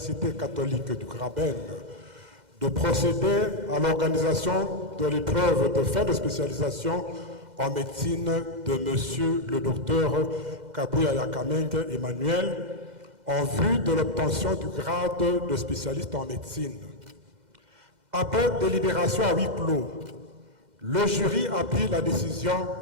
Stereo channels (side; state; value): left; late; 2.0 ms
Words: catholique du Graben de procéder à l'organisation de l'épreuve de fin de spécialisation en médecine de monsieur le docteur Kabuyaya Kamenge Emmanuel en vue de l'obtention du grade de spécialiste en médecine. Après délibération à huis clos, le jury a pris la décision